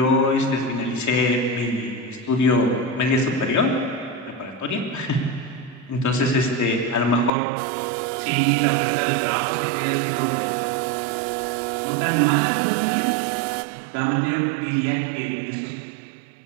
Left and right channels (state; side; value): drops out; left; at 7.3 s